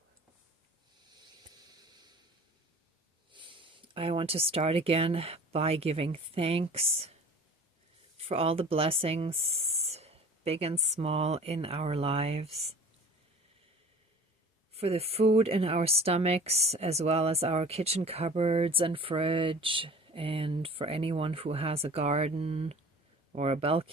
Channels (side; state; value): both; normal; correlation 0.44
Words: I want to start again by giving thanks for all the blessings, big and small, in our lives, for the food in our stomachs, as well as our kitchen cupboards and fridge, and for anyone who has a garden or a